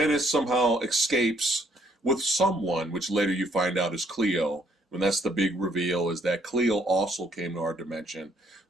somehow escapes with someone, which later you find out is Cleo. And that's the big reveal, is that Cleo also came to our dimension.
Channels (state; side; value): normal; both; correlation 0.67